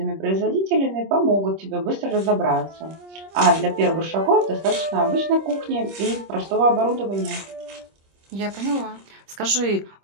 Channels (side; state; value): left; late; 25 ms